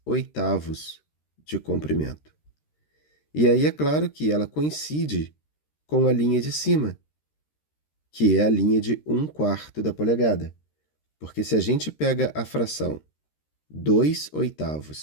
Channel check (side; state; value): right; late; 13 ms